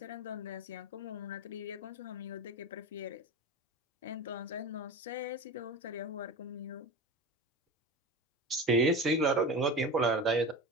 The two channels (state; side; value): normal; both; correlation 0.28